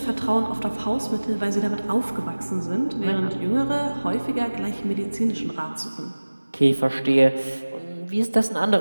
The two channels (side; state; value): both; inverted; correlation -1.00